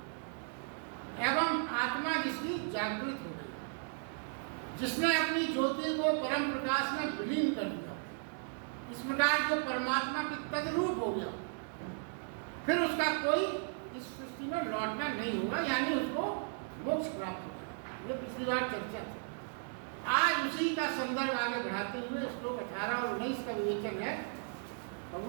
एवं आत्मा जिसकी जागृत हो गई, जिसने अपनी ज्योति को परम प्रकाश में विलीन कर दिया। इस प्रकार जो परमात्मा के तद्रूप हो गया, फिर उसका कोई इस सृष्टि में लौटना नहीं होगा, यानी उसको मोक्ष प्राप्त होगा। ये पिछली बार चर्चा थी। आज उसी का संदर्भ आगे बढ़ाते हुए श्लोक 18 और 19 का विवेचन है।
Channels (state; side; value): silent; left; 54 dB below the other